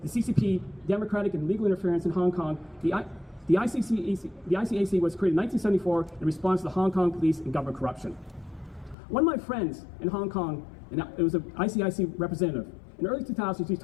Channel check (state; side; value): drops out; right; at 9.0 s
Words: the CCP democratic and legal interference in Hong Kong. The ICAC was created in 1974 in response to the Hong Kong police and government corruption. One of my friends in Hong Kong, and it was an ICIC representative, in the early 2000s, he